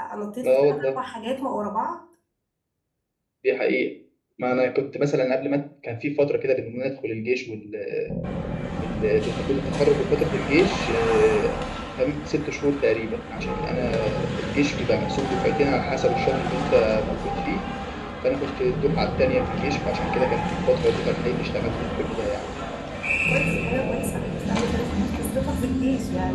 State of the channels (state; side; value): identical; both; correlation 1.00